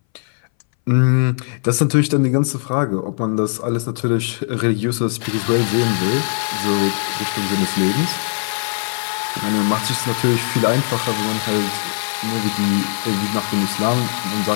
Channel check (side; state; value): right; silent; 62 dB below the other